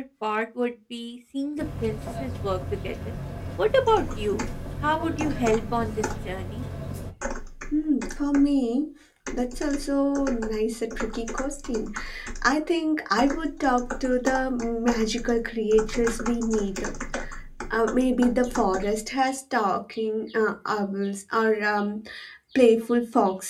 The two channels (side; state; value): both; identical; correlation 1.00